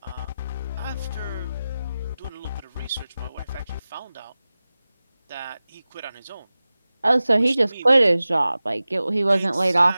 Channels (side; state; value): both; inverted; correlation -0.96